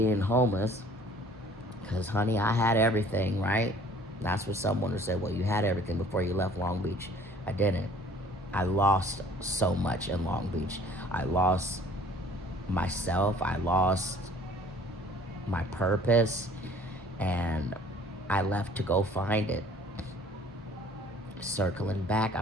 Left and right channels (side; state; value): both; normal; correlation 0.53